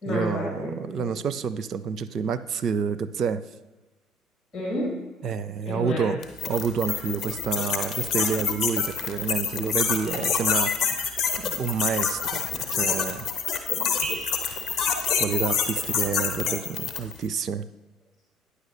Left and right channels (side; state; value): both; normal; correlation 0.53